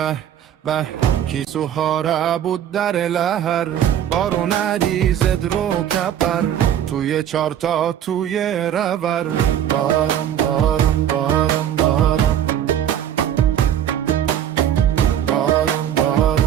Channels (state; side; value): quieter; left; 10.3 dB